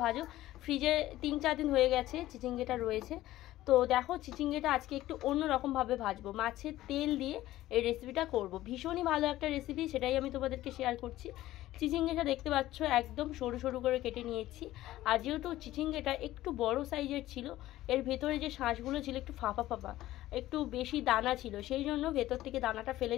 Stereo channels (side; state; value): right; quieter; 15.3 dB